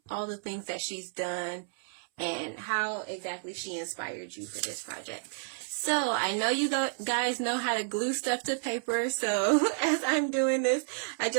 all the things that she's done and how exactly she inspired you for this project. So I know you guys know how to glue stuff to paper. So as I'm doing this, I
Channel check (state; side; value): silent; left; 57 dB below the other